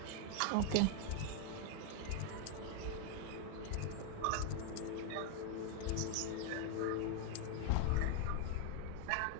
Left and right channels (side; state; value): both; different; correlation 0.00